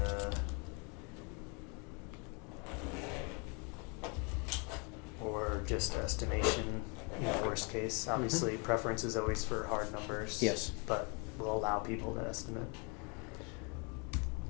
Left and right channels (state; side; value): quieter; right; 33.5 dB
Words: or just estimation, worst case. Obviously, preference is always for hard numbers. Yes. But we'll allow people to estimate.